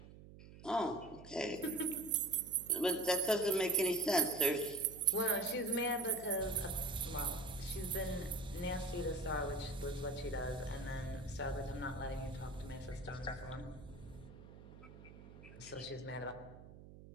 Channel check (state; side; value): noise; right; hum, 17 dB below the sound